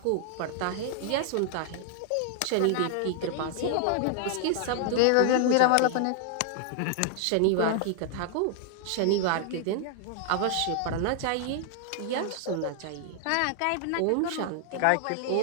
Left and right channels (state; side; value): different; both; correlation 0.00